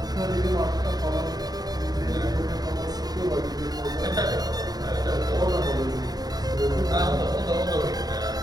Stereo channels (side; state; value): left; late; 0.19 ms